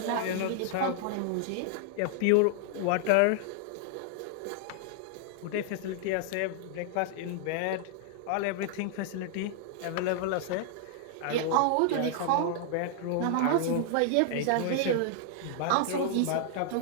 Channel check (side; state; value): both; different; correlation -0.01